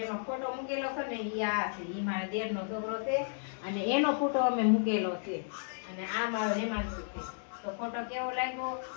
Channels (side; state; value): right; silent; digital silence